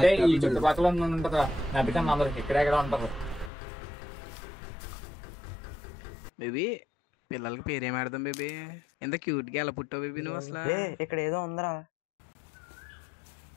ఈ చుట్టుపక్కల ఉంటుందా? నవ్వికన్నా అందరికి ఇక్కడెక్కడ ఉంటారు. బేబీ పిల్లలకి పేరేం ఆడదాం బేబీ? ఎంత క్యూట్గా ఎలా పుట్టావు బేబీ నువ్వు అసలు? ఇక్కడ ఏదో ఉందిరా.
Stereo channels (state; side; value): drops out; right; at 3.5 s